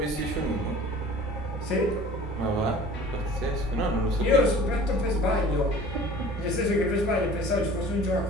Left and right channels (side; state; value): both; normal; correlation 0.45